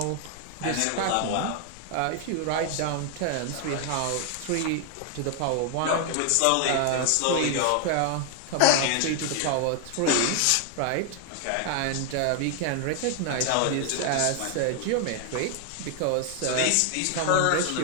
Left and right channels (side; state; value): both; different; correlation 0.00